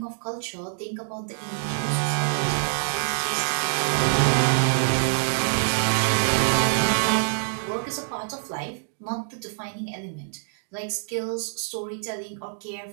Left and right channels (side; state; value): left; silent; digital silence